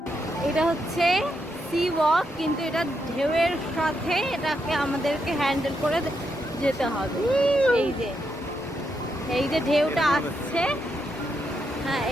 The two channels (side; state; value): both; normal; correlation 0.81